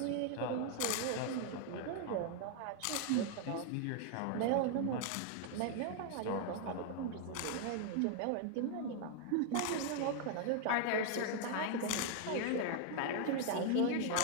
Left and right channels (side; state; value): both; different; correlation 0.00